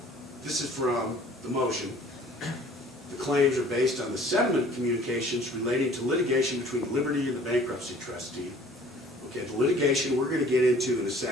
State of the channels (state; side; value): normal; both; correlation 0.52